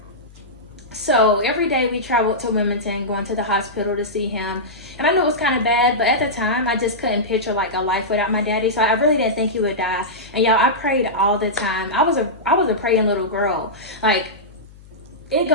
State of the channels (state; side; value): noise; left; hum, 22 dB below the sound